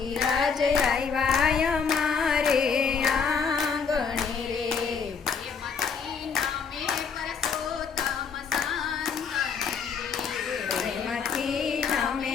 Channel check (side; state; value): right; quieter; 6.0 dB